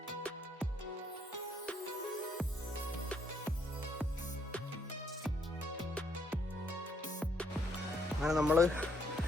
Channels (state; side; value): normal; both; correlation 0.71